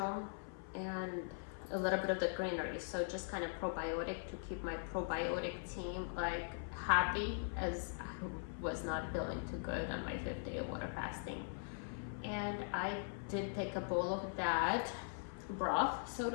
and a little bit of the greenery, so just kind of probiotic to keep my probiotic team like happy, as I was not feeling too good on my 5th day of water fasting. And I did take a bowl of that broth, so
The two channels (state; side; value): silent; right; 50 dB below the other